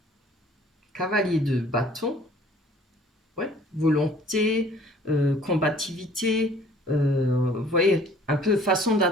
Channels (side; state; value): both; normal; correlation 0.54